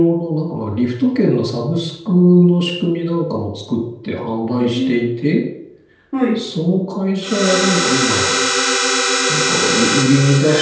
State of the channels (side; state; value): both; identical; correlation 1.00